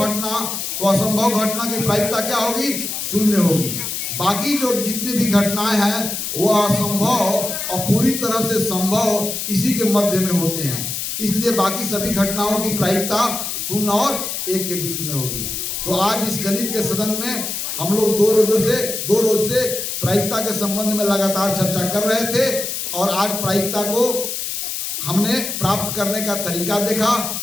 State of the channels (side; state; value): left; noise; hiss, 4 dB below the sound